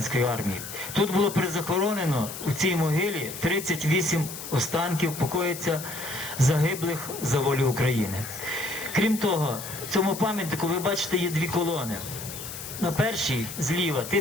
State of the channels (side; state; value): left; noise; hiss, 10 dB below the sound